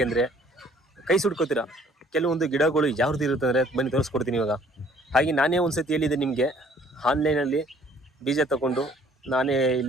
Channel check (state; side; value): normal; both; correlation 0.58